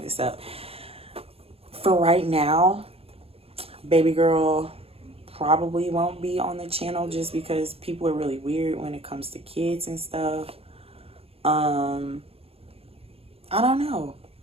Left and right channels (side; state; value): left; late; 0.28 ms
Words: up. For right now, baby girl probably won't be on the channel just because people are really weird when it comes to kids and stuff. I don't know,